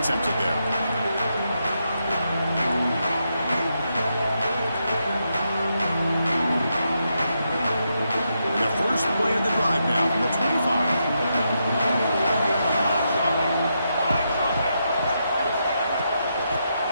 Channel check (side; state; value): both; inverted; correlation -0.83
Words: there. The first play of the drive now from the 25.